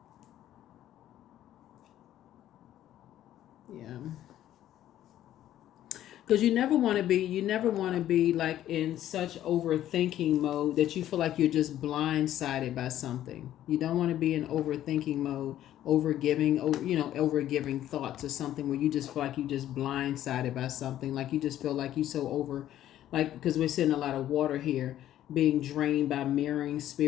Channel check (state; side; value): quieter; right; 12.4 dB